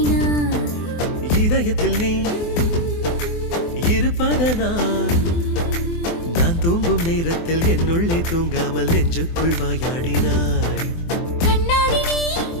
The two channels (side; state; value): right; late; 24 ms